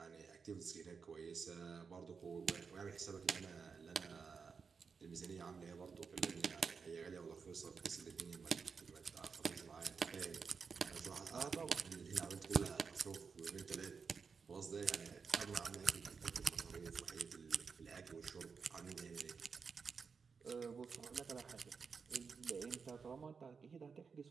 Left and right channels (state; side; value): quieter; left; 5.5 dB